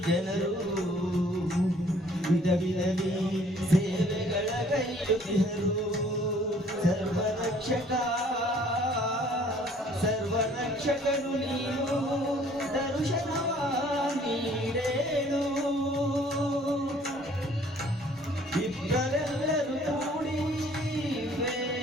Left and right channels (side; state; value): both; normal; correlation 0.57